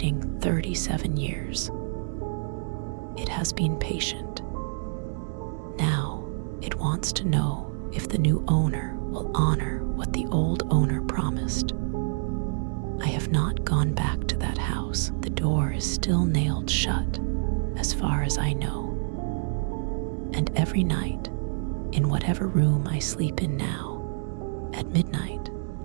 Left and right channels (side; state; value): left; silent; digital silence